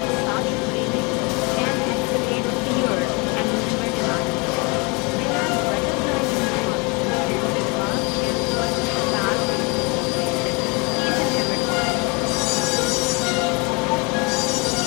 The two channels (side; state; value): right; quieter; 29.9 dB